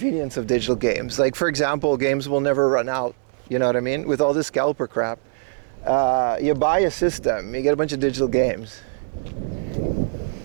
of digital games. Like, for example, games will never run out. You know what I mean? With all this scalper crap. You buy a system, you get a bunch of digital games.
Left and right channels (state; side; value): silent; left; digital silence